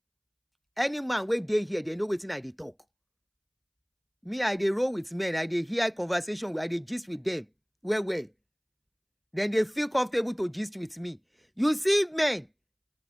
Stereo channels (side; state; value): both; identical; correlation 1.00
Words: Any man wey dey here, they know wetin I dey talk. Me, I dey roll with men. I dey hear conversation. I dey gist with them. Well. Then they feel comfortable to gist with me. You see men,